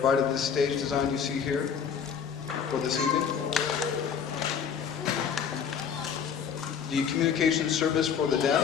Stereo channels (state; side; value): quieter; right; 7.2 dB